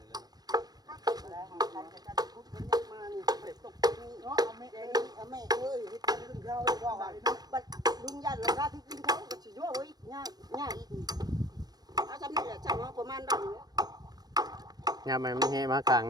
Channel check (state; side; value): late; left; 0.19 ms